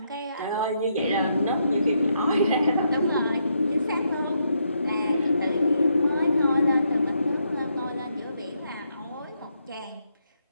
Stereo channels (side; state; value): both; inverted; correlation -0.77